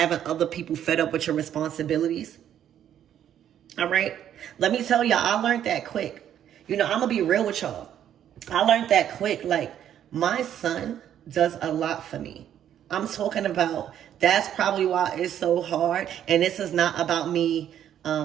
other people fed up with your responsibilities. All right? Let me tell y'all, I learned that quick. You know, I'm going to be real with y'all. I learned that quick. Like, my son does a lot for me. I'm talking about, that's probably why it's so hard. And this is not about me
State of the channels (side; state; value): left; quieter; 10.3 dB